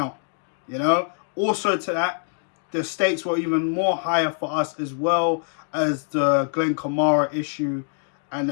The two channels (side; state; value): right; silent; digital silence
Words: you know. Also to that, the stakes were even more higher for us as well as the Glenn Kamara issue and the